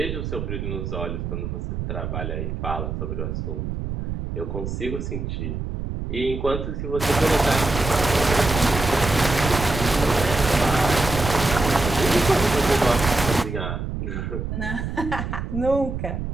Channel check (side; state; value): right; noise; rumble, 4 dB below the sound